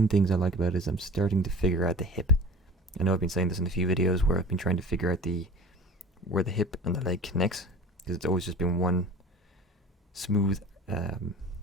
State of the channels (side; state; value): both; normal; correlation 0.40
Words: things I like about it is I'm starting to figure out the hip. I know I've been saying this in a few videos where I've been trying to figure out where the hip and the leg connects, because it's always just been one smooth